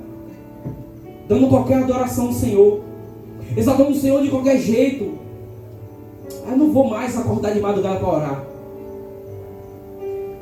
dando qualquer adoração ao Senhor, exaltando o Senhor de qualquer jeito. Eu não vou mais acordar de madrugada para orar.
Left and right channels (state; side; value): identical; both; correlation 1.00